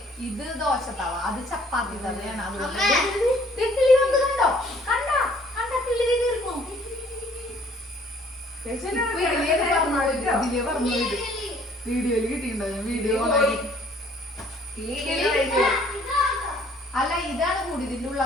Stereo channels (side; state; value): both; normal; correlation 0.59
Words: ഇത് ദോശത്തവ, അത് ചപ്പാത്തി തവയാണ്. അതുകൊണ്ട് കണ്ടോ കണ്ടോ കണ്ട കിളി തീർന്നു. വീഡിയോയില് കിട്ടിയിട്ടുണ്ടോ? വീഡിയോ അല്ല ഇതാണ് കൂടി, ഇതിന്റെ ഉള്ള